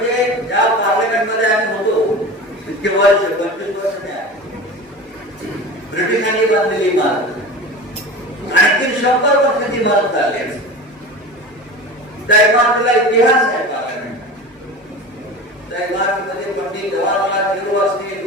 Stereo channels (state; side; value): normal; both; correlation 0.32